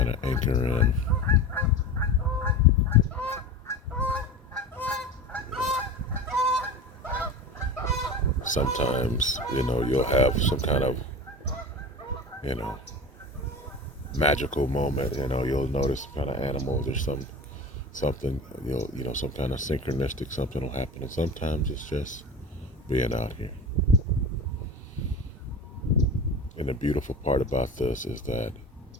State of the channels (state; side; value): normal; both; correlation 0.31